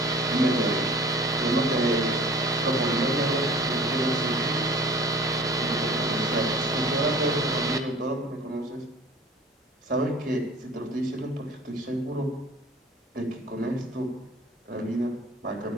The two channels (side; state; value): both; normal; correlation 0.46